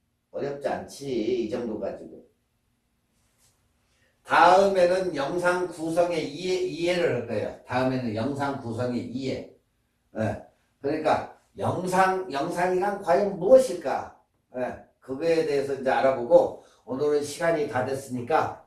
어렵지 않지. 이 정도 가지고. 다음에는 영상 구성의 이해를 할 거예요. 다음에는 영상 구성의 이해. 네. 그러니까 영상이란 과연 무엇일까? 네. 그거에 대해서 이제 알아보고, 오늘은 시간이 다 됐으니까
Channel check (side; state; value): both; identical; correlation 1.00